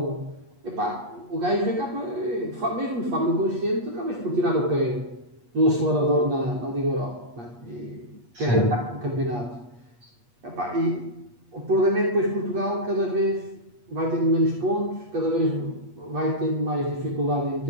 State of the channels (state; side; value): late; left; 8.3 ms